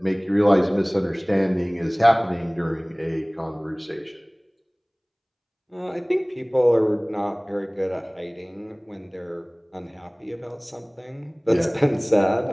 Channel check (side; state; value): both; identical; correlation 1.00